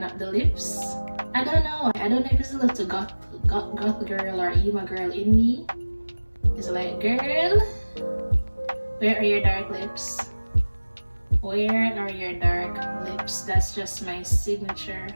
up the lips. I don't know if it's a little goth girl or emo girl in me. It's like, girl, where are your dark lips? Where are your dark lips? That's just my signature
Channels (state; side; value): inverted; both; correlation -1.00